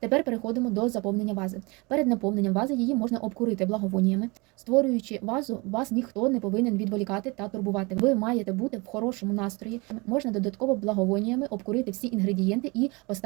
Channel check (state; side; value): quieter; left; 26.8 dB